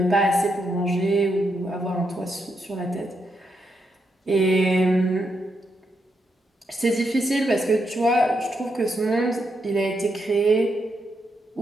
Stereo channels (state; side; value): normal; both; correlation 0.81